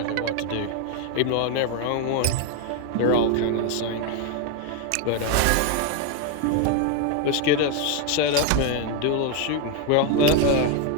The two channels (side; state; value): both; different; correlation 0.01